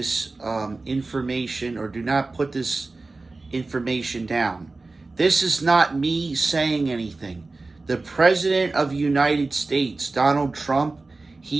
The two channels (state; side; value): quieter; left; 3.5 dB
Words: information or do not put this information down. This is not me saying anything. The President of the United States, Donald Trump,